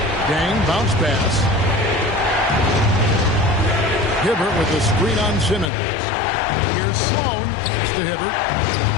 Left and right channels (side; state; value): right; drops out; at 5.7 s